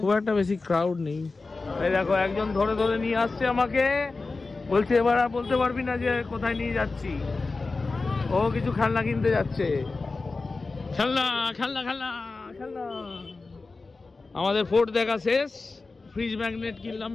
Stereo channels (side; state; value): right; quieter; 3.8 dB